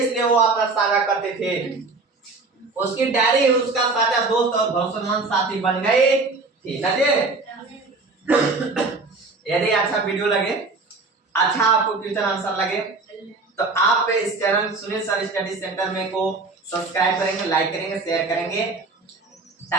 वो अपना साझा करते थे। उसकी डायरी उसका साझा दोस्त और भरोसेमंद साथी बन गई थी। यदि अच्छा वीडियो लगे, अच्छा आपको क्वेश्चन आंसर लगे, तो आप इस channel Sunil sir study centre में को सब्सक्राइब करेंगे, लाइक करेंगे, शेयर करेंगे,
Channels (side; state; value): left; quieter; 3.7 dB